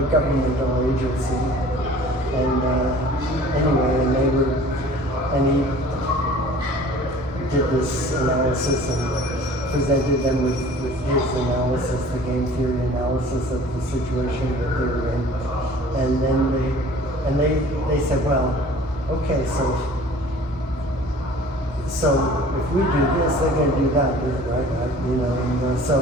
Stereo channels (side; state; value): both; normal; correlation 0.47